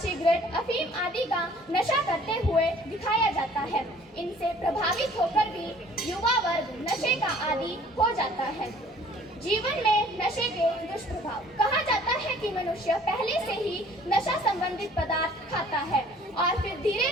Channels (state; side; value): normal; both; correlation 0.54